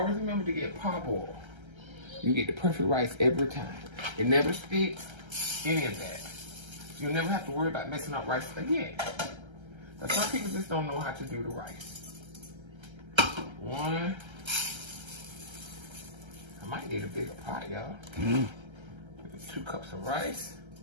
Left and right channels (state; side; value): late; left; 1.3 ms